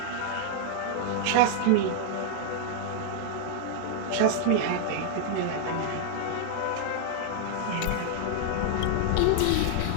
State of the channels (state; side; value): different; both; correlation 0.00